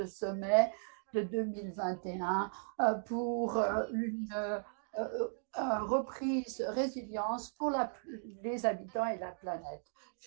sommet de 2021 pour une reprise résilience pour les habitants et la planète.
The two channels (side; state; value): left; silent; digital silence